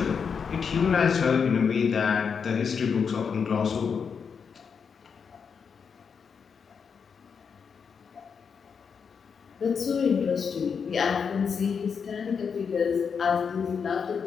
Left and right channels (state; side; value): quieter; right; 6.3 dB